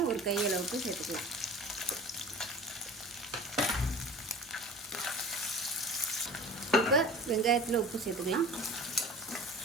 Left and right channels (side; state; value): both; normal; correlation 0.40